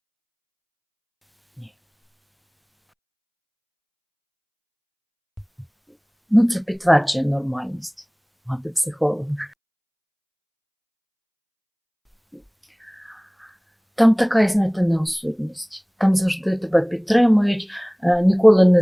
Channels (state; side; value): identical; both; correlation 1.00